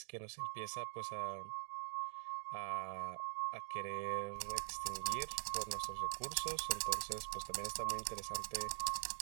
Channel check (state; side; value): silent; left; digital silence